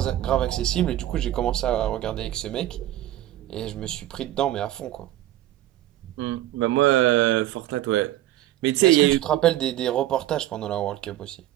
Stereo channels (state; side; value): quieter; left; 13.9 dB